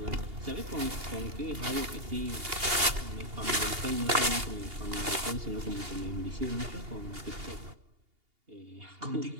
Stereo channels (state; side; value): late; left; 2.8 ms